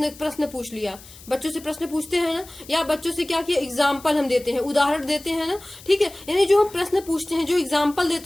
पूछ लिया। बच्चों से प्रश्न पूछते हैं ना, या बच्चों से क्या किया, एग्जाम्पल हम देते हैं, उदाहरण देते हैं ना। ठीक है, यानी जो हम प्रश्न पूछते हैं, जो एग्जाम्पल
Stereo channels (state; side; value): noise; left; hiss, 20 dB below the sound